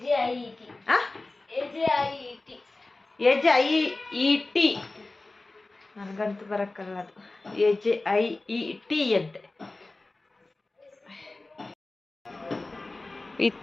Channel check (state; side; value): quieter; right; 3.1 dB